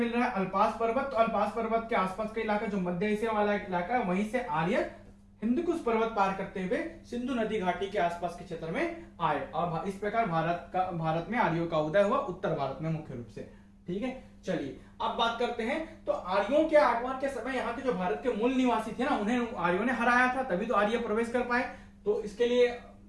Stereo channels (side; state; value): both; identical; correlation 1.00